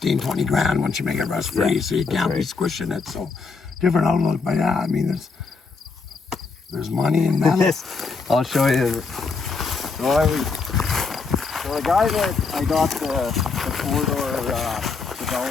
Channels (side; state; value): right; quieter; 4.6 dB